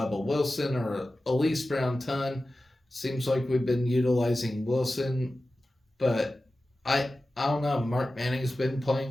Wilson or Elise Brown-Tunn. Seems like we've been utilizing Wilson, but I don't know. Mark Manning's been playing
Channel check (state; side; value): normal; both; correlation 0.94